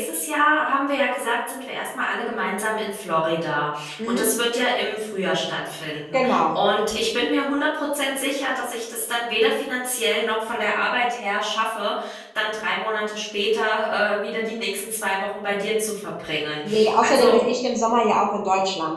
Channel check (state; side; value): identical; both; correlation 1.00